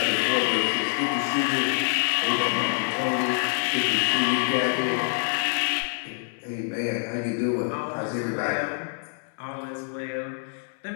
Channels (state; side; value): silent; right; 61 dB below the other